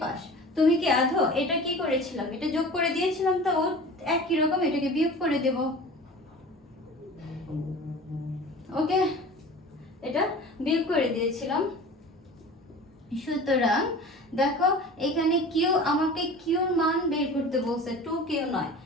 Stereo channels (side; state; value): both; normal; correlation 0.39